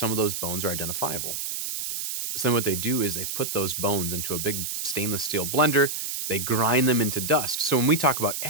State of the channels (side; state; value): right; noise; hiss, 4 dB below the sound